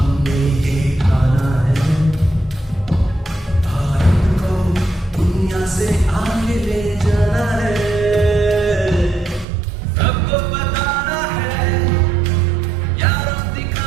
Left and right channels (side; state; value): left; drops out; at 9.5 s